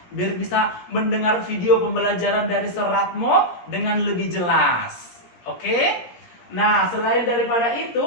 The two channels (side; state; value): right; late; 17 ms